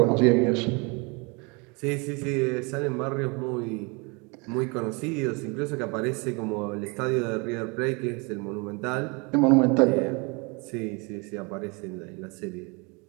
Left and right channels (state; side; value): quieter; left; 30.2 dB